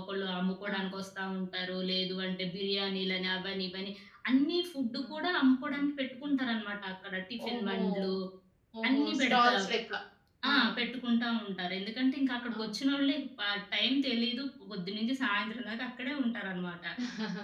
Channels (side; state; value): both; identical; correlation 1.00